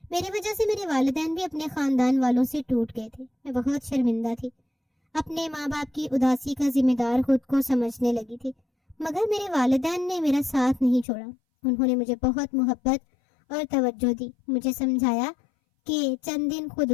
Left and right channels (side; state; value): right; drops out; at 11.1 s